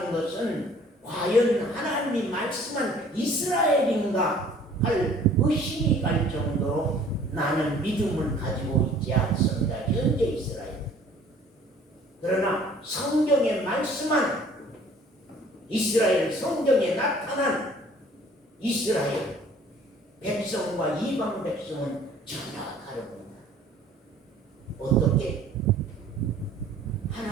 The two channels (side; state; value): both; normal; correlation 0.53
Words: 것은 과연 하나님이 말씀한 이스라엘인가 할 의심이 갈 정도로 나는 믿음을 가지고 있지 않습니다. 현재 이스라엘. 그러나 성경에 말씀한 이스라엘, 성경에 나타난 이스라엘 백성과 이방 백성은 전혀 다릅니다. 어떻게?